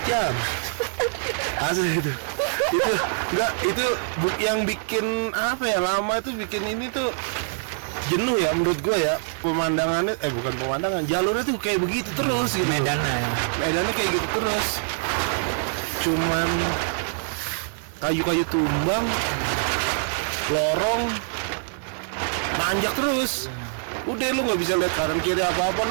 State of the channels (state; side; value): silent; left; 60 dB below the other